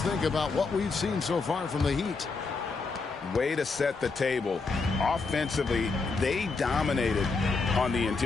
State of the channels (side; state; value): right; quieter; 4.2 dB